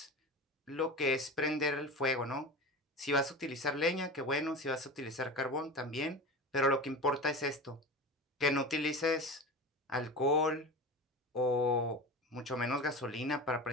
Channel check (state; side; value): normal; both; correlation 0.31